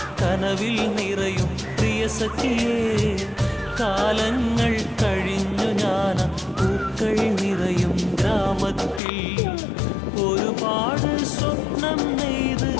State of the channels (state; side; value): drops out; right; at 9.0 s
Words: കനവിൽ നിറയും പ്രിയ സഖിയേ കാലങ്ങൾ കഴിഞ്ഞു ഞാൻ പൂക്കൾ നിറയും ഗ്രാമത്തിൽ ഒരുപാട് സ്വപ്നം നെയ്ത്